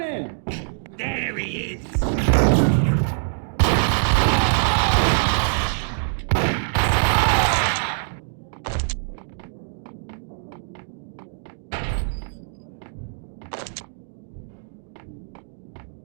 There he is!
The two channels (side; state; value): left; silent; digital silence